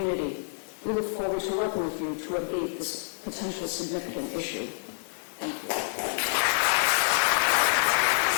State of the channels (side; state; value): right; silent; digital silence